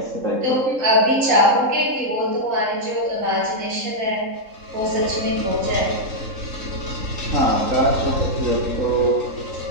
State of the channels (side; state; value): left; late; 3.8 ms